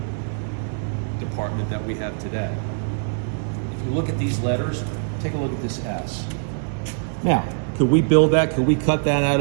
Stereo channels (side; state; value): left; silent; 57 dB below the other